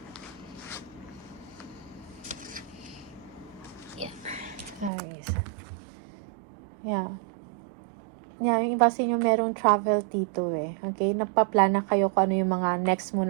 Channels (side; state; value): left; drops out; at 4.9 s